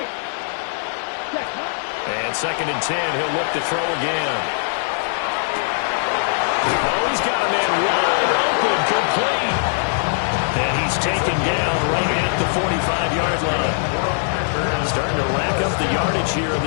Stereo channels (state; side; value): silent; right; digital silence